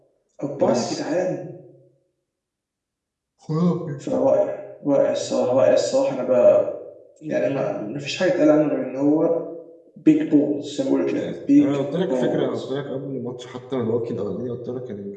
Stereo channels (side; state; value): both; identical; correlation 1.00